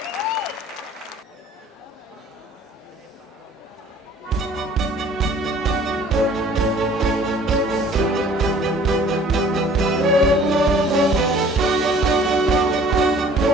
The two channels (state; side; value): normal; both; correlation 0.52